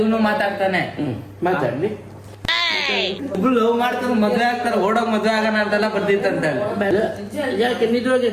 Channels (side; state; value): both; identical; correlation 1.00